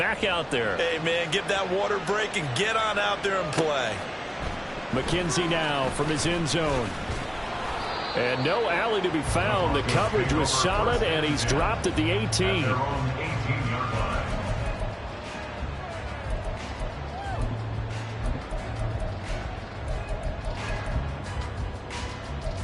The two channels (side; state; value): both; identical; correlation 1.00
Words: out there. Hey, man, give that water break and get on out there and play. McKenzie now from his end zone. And no alley to be found. The coverage was solid, and he's dropped at the 18.